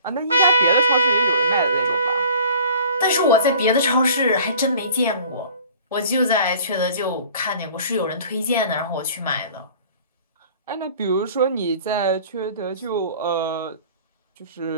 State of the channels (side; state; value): both; inverted; correlation -0.48